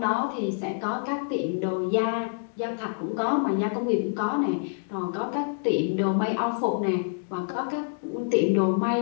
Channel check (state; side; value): silent; right; digital silence